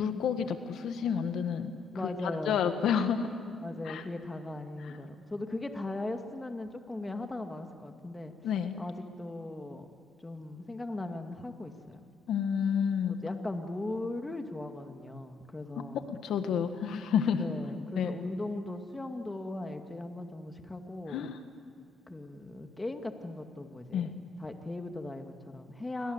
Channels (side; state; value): right; quieter; 5.1 dB